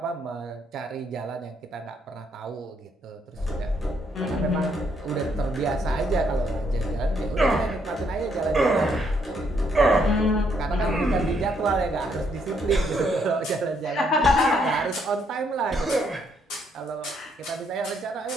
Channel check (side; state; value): both; normal; correlation 0.72